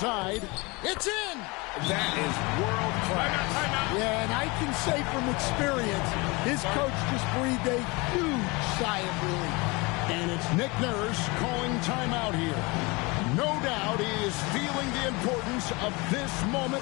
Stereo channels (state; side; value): quieter; right; 26.0 dB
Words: It's in! That is world class. Yeah, and I can say from experience, his coach just breathed a huge sigh of relief. And it's Nick Nurse calling timeout here. No doubt he is feeling the importance of this moment